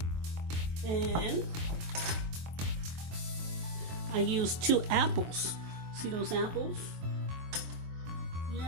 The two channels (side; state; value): left; late; 23 ms